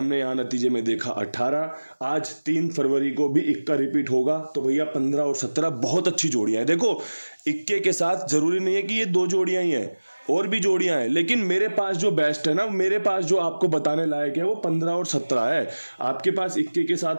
यहाँ नतीजे में देखा 18, आज 3 फरवरी को भी इक्का रिपीट होगा। तो भैया 15 और 17 बहुत अच्छी जोड़ियां हैं। देखो, इक्के के साथ जरूरी नहीं है कि ये 2 जोड़ियां ही हैं, और भी जोड़ियां हैं, लेकिन मेरे पास जो बेस्ट है ना, मेरे पास जो आपको बताने लायक है वो 15 और 17 है। आपके पास इक्के के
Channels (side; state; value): both; inverted; correlation -1.00